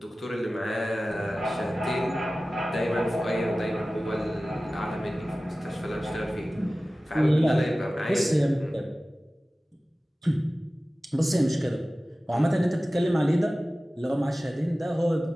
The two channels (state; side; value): normal; both; correlation 0.96